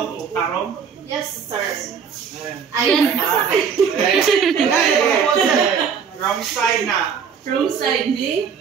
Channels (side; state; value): left; quieter; 6.7 dB